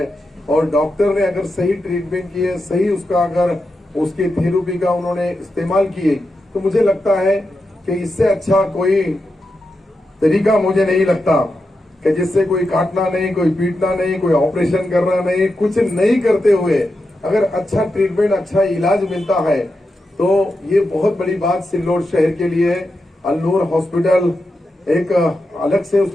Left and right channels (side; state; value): both; normal; correlation 0.88